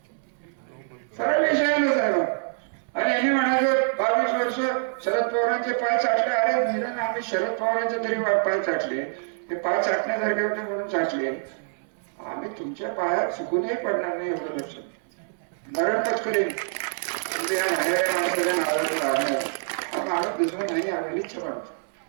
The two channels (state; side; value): silent; left; 61 dB below the other